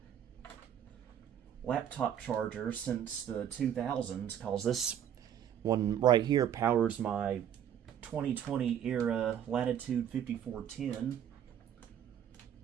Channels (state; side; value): quieter; left; 9.6 dB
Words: laptop charger since the 2000s, because this one right here powers my 2020 era Latitude 5410.